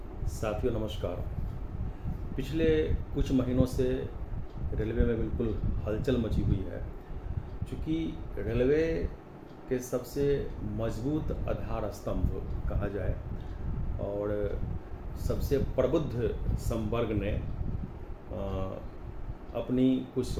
साथियों नमस्कार। पिछले कुछ महीनों से रेलवे में बिल्कुल हलचल मची हुई है। चूँकि रेलवे के सबसे मजबूत आधार स्तंभ कहा जाए और सबसे प्रबुद्ध संवर्ग ने अपनी कुछ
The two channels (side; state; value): both; identical; correlation 1.00